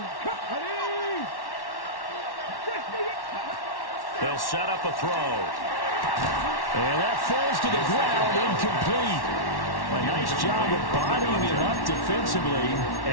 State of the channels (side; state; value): right; late; 1.1 ms